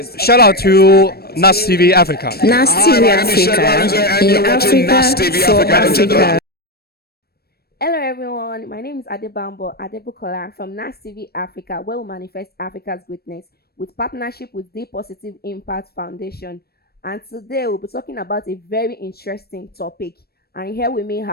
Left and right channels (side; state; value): right; late; 0.46 ms